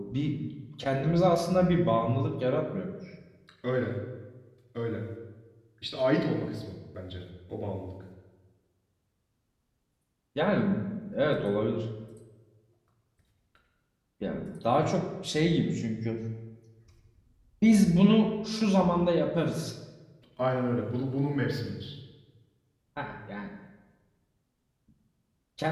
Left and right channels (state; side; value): identical; both; correlation 1.00